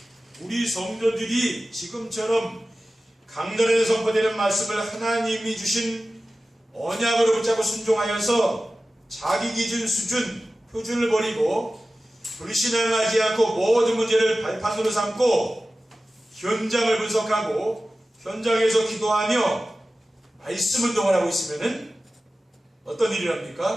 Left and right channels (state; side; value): normal; both; correlation 0.95